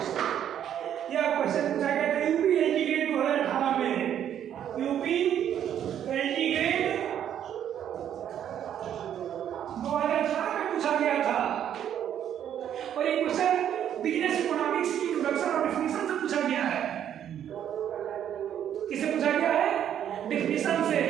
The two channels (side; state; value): left; quieter; 9.9 dB